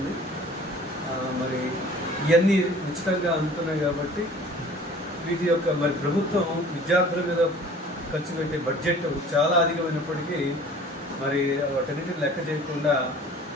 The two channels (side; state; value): both; normal; correlation 0.48